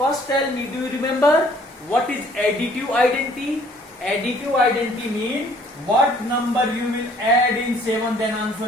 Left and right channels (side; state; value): both; normal; correlation 0.58